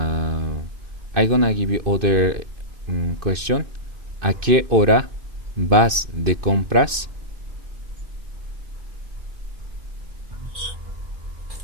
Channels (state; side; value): late; left; 2.5 ms